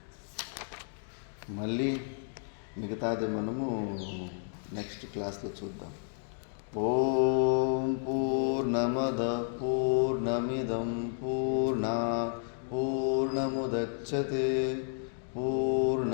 మళ్ళీ మిగతాది మనము నెక్స్ట్ క్లాస్లో చూద్దాం. ఓం పూర్ణమద పూర్ణమిదం పూర్ణాత్ పూర్ణముదచ్యతే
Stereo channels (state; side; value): silent; right; digital silence